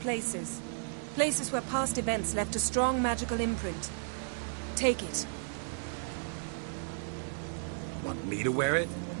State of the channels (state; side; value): silent; left; 55 dB below the other